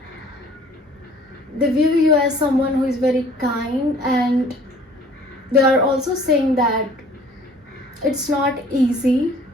someone who is very kind. And they are also saying that it's not easy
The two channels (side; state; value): both; normal; correlation 0.53